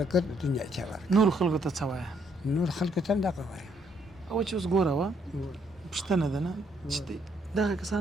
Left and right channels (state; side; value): normal; both; correlation 0.71